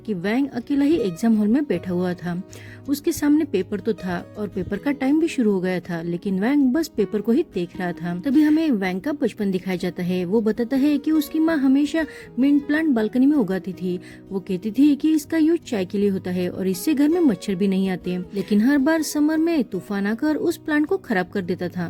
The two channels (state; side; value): identical; both; correlation 1.00